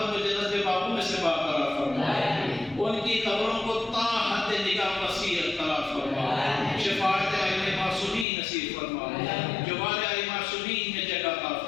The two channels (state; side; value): drops out; right; at 8.2 s